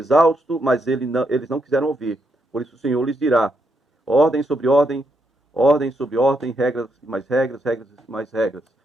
mas eles não quiseram ouvir. Por isso o Senhor lhes dirá, ordem sobre ordem, ordem sobre ordem, regras e mais regras, regras e mais regras.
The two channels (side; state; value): both; normal; correlation 0.79